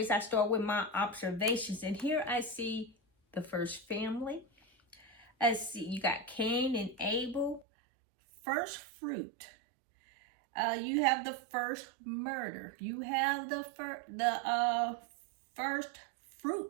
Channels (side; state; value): left; drops out; at 7.7 s